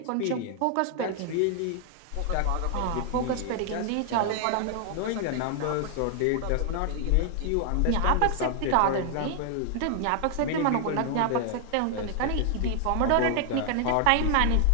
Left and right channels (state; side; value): different; both; correlation 0.00